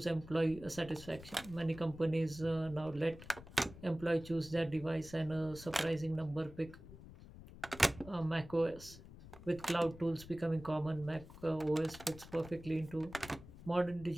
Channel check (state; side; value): noise; left; rumble, 16 dB below the sound